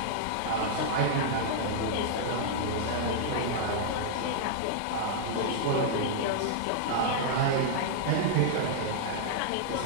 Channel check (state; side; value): different; both; correlation -0.02